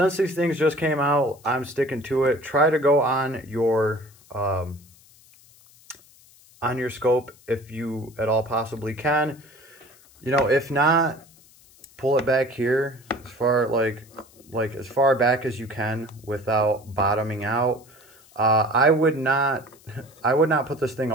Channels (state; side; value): noise; left; hiss, 27 dB below the sound